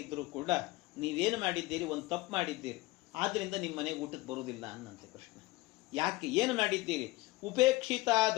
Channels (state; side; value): quieter; right; 19.9 dB